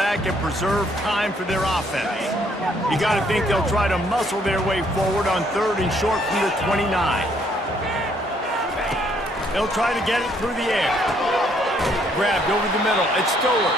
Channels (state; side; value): normal; both; correlation 0.67